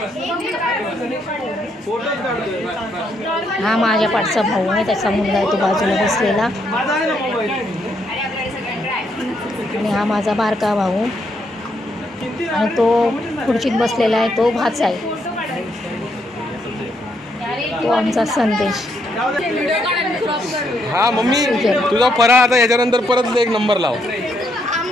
हा माझ्या पाठचा भाऊ आहे, त्याचा मुलगा आहे तो बाजूला बसलेला. आणि हा माझा बारका भाऊ आणि तो खुर्चीत बसलेला आहे, तो भाचा आहे. तो आमचा संदेश. हा मम्मी तुझा फराळ आता याच्यानंतर परत एक नंबर लाव.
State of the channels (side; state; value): both; normal; correlation 0.75